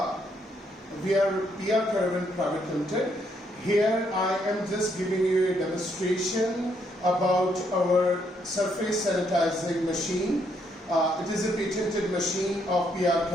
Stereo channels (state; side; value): normal; both; correlation 0.73